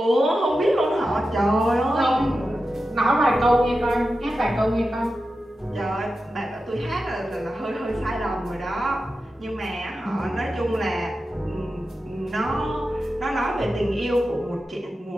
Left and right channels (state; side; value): normal; both; correlation 0.91